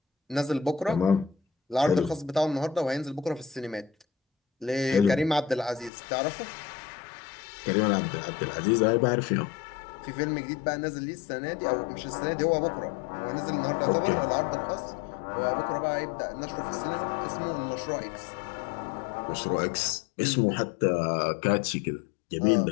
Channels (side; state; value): right; drops out; at 5.9 s